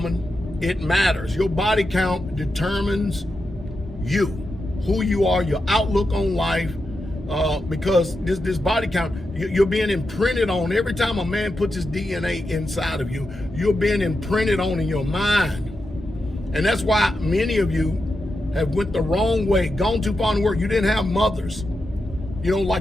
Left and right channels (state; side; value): normal; both; correlation 0.88